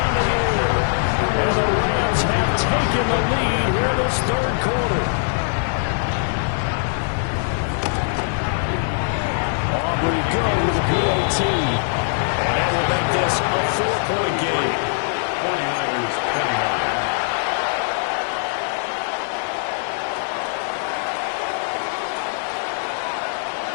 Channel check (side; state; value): right; silent; 64 dB below the other